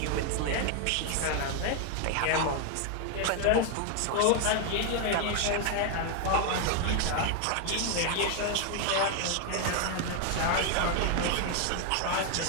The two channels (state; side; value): different; both; correlation 0.00